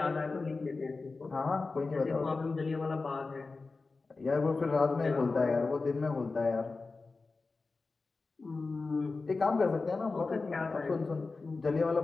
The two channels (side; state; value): right; quieter; 3.9 dB